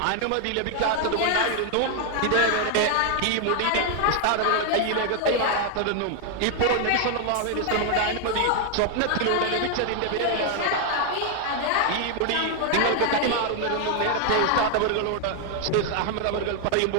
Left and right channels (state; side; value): different; both; correlation 0.00